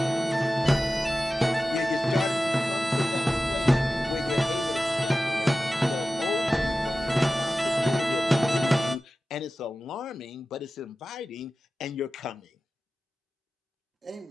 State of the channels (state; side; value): normal; both; correlation 0.95